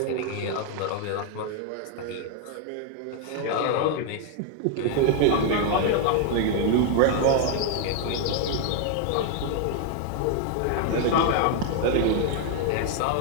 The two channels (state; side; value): different; both; correlation 0.00